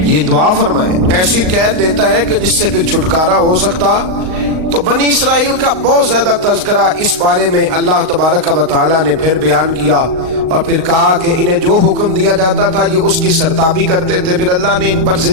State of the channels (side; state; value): left; late; 38 ms